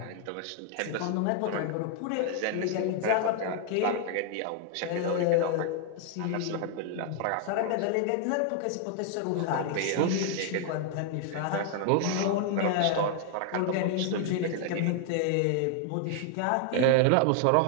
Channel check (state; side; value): different; both; correlation 0.00